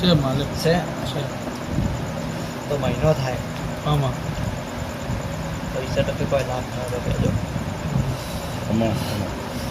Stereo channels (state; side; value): identical; both; correlation 1.00